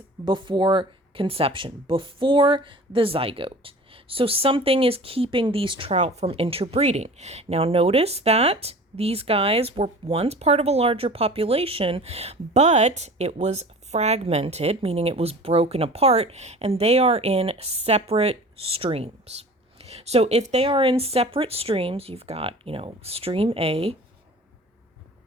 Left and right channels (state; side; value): normal; both; correlation 0.41